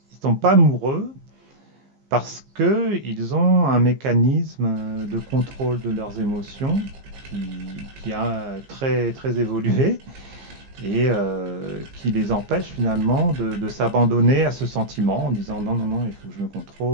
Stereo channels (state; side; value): late; left; 15 ms